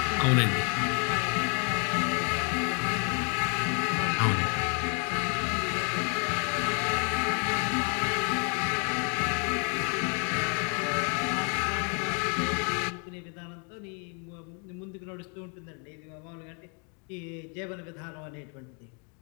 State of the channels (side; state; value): right; quieter; 38.6 dB